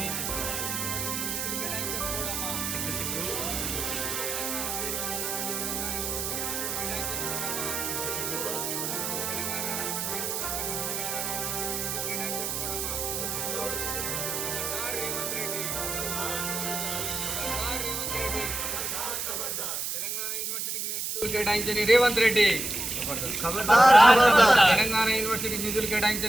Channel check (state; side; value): noise; right; hiss, 2 dB below the sound